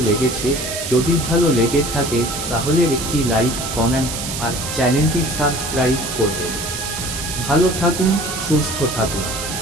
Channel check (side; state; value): right; noise; hiss, 6 dB below the sound